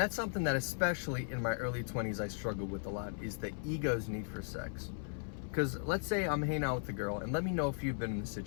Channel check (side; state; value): right; silent; 53 dB below the other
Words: something that especially in my early 20s I struggled with a lot, is the ego's need for sex. Because let's say I'm hanging out with a girl, and let me know if you've been in this